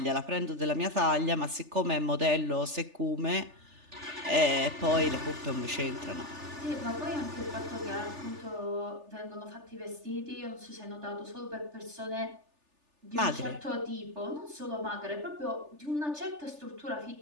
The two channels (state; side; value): late; left; 3.4 ms